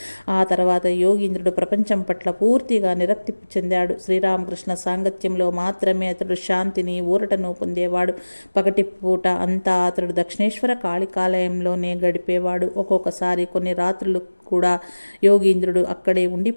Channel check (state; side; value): inverted; both; correlation -1.00